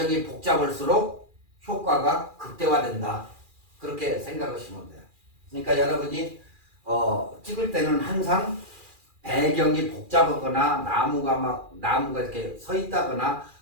복잡할수록 효과가 극대화된다, 그렇게 생각하시면 돼요. 그러니까 여러분이 찍을 때는 항상 배경이 복잡하거나 나무가 이렇게 서 있다거나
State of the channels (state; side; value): late; left; 2.4 ms